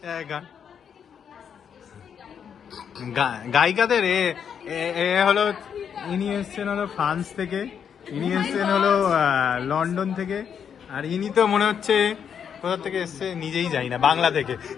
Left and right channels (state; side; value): quieter; right; 7.7 dB